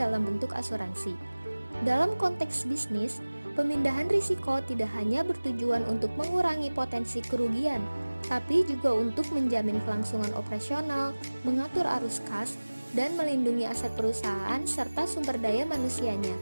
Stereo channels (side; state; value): both; inverted; correlation -1.00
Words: bentuk asuransi. Dalam konteks bisnis, pemindahan risiko tidak hanya bertujuan untuk mengurangi potensi kerugian, tapi juga untuk menjamin kelangsungan operasional, mengatur arus kas, dan melindungi aset perusahaan serta sumber daya manusianya.